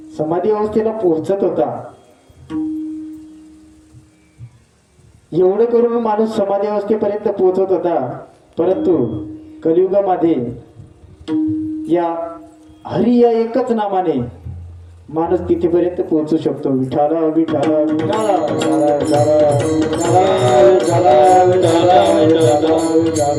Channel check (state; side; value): identical; both; correlation 1.00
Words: समाधी अवस्थेला पोहोचत होता, एवढं करून माणूस समाधी अवस्थेपर्यंत पोहोचत होता. परंतु कलियुगामध्ये या हरी या एकच नामाने माणूस तिथेपर्यंत पोहोचू शकतो. विठाला विठाला विठाला विठाला विठाला विठाला विठाला विठाला